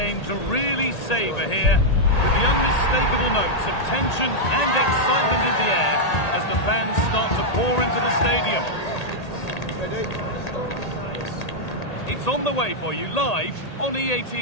to really savour here, with the unmistakable notes of tension and excitement in the air as the fans start to pour into the stadium. It's on the way for you live on EA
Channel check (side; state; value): right; late; 1.8 ms